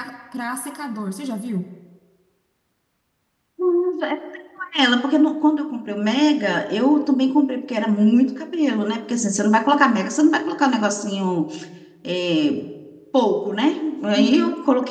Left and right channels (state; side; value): identical; both; correlation 1.00